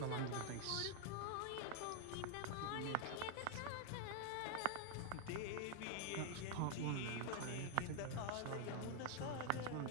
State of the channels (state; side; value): different; both; correlation 0.00